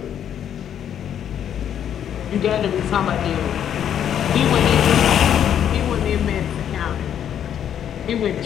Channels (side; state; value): right; quieter; 9.5 dB